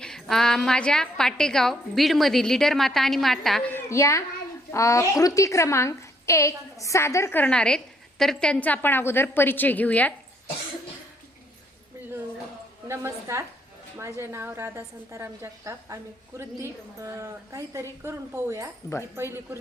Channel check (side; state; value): both; normal; correlation 0.69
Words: माझ्या पाटेगाव बीडमधील लीडर माता आणि माता या कृती क्रमांक 1 सादर करणार आहेत. तर त्यांचा आपण अगोदर परिचय घेऊयात. नमस्कार, माझे नाव राधा संताराम जगताप. आम्ही कृती काहीतरी करून पाहूया. ही पहिली